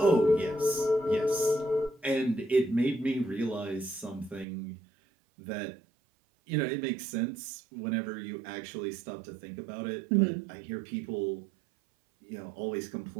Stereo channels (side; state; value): left; drops out; at 4.5 s